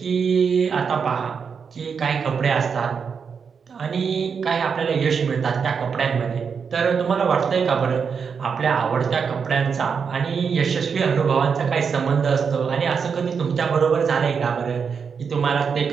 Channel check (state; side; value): quieter; left; 6.2 dB